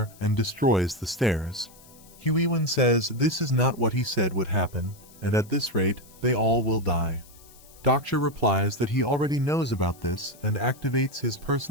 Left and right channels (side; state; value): left; noise; hiss, 24 dB below the sound